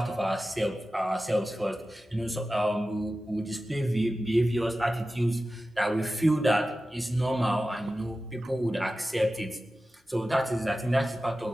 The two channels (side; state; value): both; normal; correlation 0.94